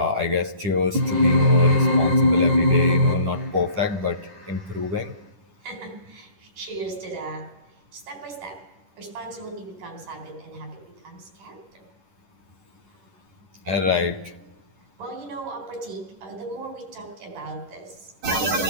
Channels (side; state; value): left; late; 10 ms